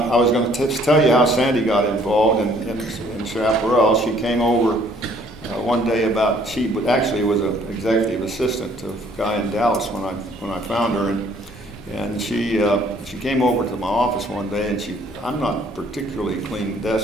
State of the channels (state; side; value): normal; both; correlation 0.61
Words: was going to tell you how Sandy got involved in Chaparral. She came over one day she actually was an executive assistant to a guy in Dallas when I found her, and she came over to my office one day, and I'm not particularly a clean